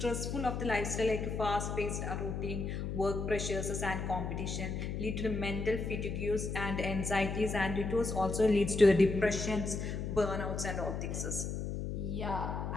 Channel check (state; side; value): noise; left; hum, 3 dB below the sound